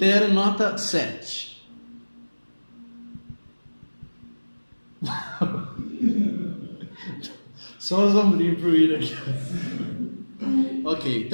nota 7. Só os ombrinhos pro William aqui. Ok,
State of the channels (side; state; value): both; inverted; correlation -1.00